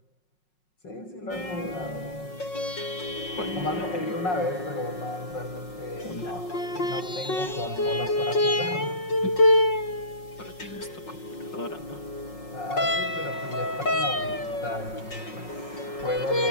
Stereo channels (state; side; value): late; right; 5.5 ms